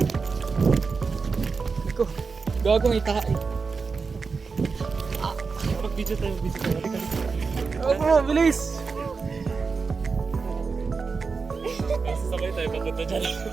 Ako, gagawang itahay. Mag-video tayo, Bro, bilis! Sasabay tayo, papunta dyan.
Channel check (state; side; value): quieter; left; 4.8 dB